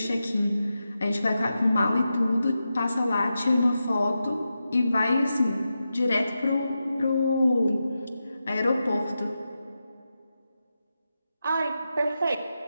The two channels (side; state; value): both; inverted; correlation -0.90